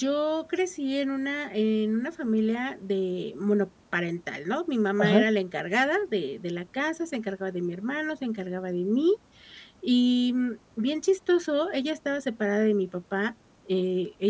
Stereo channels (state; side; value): identical; both; correlation 1.00